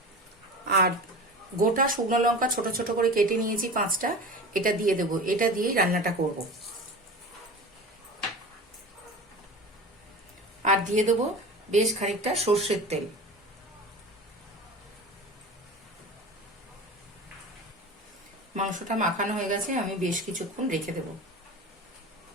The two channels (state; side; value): normal; both; correlation 0.33